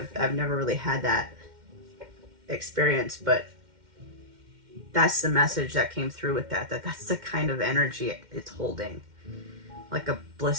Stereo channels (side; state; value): left; late; 2.1 ms